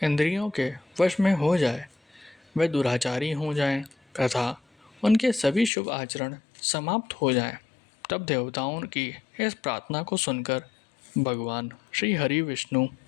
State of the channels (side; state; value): right; drops out; at 5.7 s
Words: इंद्रियों के वश में हो जाए, वे दुराचारी हो जाएं तथा उनके सभी शुभ आचरण समाप्त हो जाएं। तब देवताओं की इस प्रार्थना को सुनकर भगवान श्री हरि विष्णु